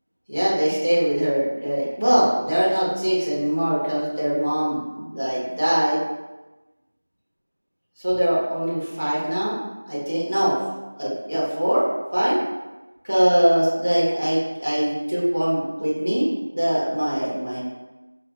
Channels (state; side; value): inverted; both; correlation -1.00